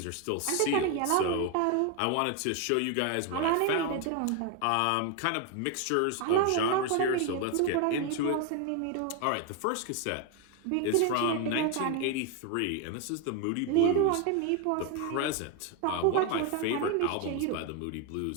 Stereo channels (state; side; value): different; both; correlation 0.01